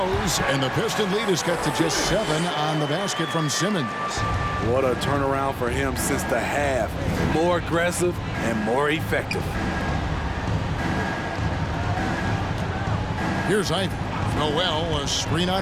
And the Piston lead is cut to just 7 on the basket from Simmons. What a turnaround for him since the half. More aggressive and more effective. Here's Ivy. Noel, a screen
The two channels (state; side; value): identical; both; correlation 1.00